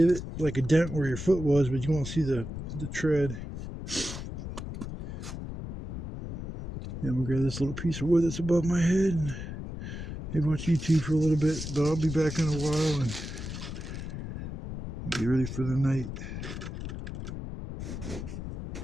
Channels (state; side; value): noise; left; rumble, 7 dB below the sound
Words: like a dent where your foot was, but you won't see the tread. And we'll grab this little piece of wood that's above my head and maybe watch YouTube for a little bit, but I'll be back in a while and get ready for the night.